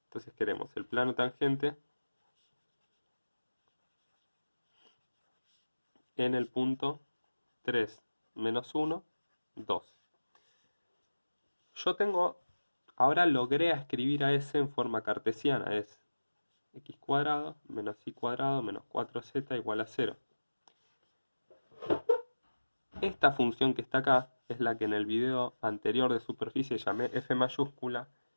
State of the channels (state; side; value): inverted; both; correlation -1.00